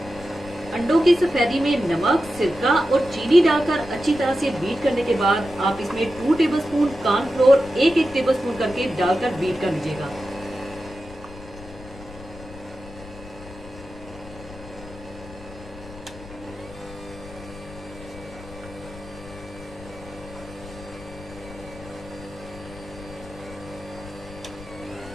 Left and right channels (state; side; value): noise; left; rumble, 17 dB below the sound